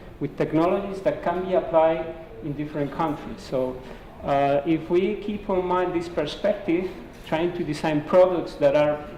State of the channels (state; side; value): identical; both; correlation 1.00